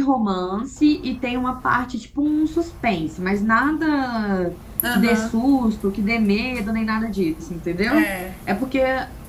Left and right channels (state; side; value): identical; both; correlation 1.00